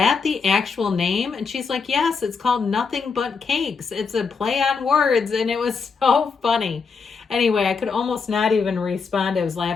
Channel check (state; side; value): quieter; right; 5.3 dB